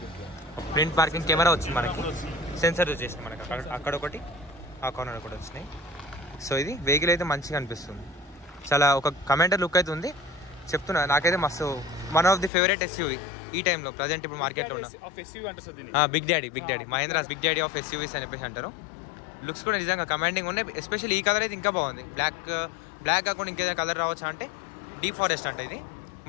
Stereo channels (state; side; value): drops out; right; at 12.5 s